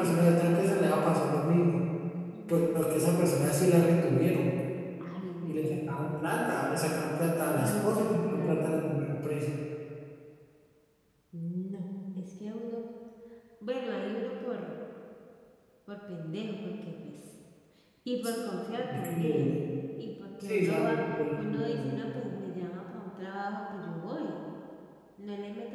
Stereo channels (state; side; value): identical; both; correlation 1.00